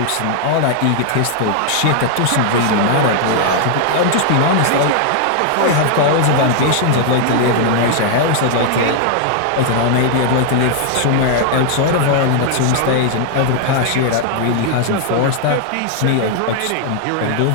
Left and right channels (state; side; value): different; both; correlation 0.00